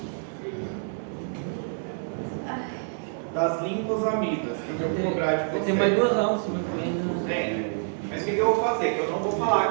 Das linfosamidas, que eu vou cobrar de vocês. Tem mais 2 aulas semana que vem, né? Tem. Mas o que eu vou fazer? Eu não vou falar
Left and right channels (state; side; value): silent; left; digital silence